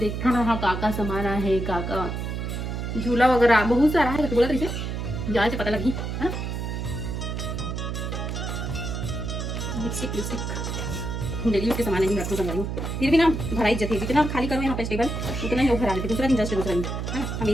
ना हाँ काका सामान है, काका झूला वगैरह बहुत सारा है। बोला तरीके जाए से पता लगी है ना। लिपस्टिक डेली उसके सामान नहीं रखो संभालो, फिर भी ना भरा इज्जत है। जितना खाली करो यहाँ पे टेबल उतना ही लोग भरा लेते। दूसरा दिन जस्ट दूसरा दिन है ना,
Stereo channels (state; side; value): noise; right; hum, 3 dB below the sound